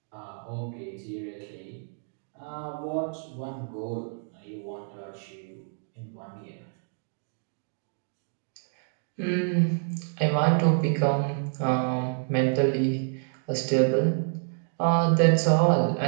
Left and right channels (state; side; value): silent; left; digital silence